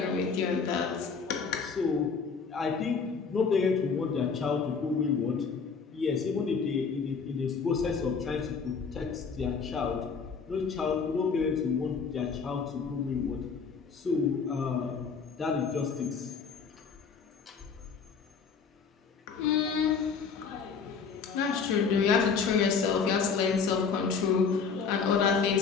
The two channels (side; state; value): right; quieter; 5.6 dB